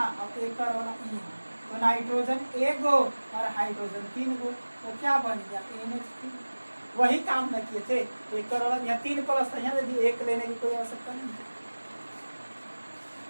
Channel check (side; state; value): both; inverted; correlation -1.00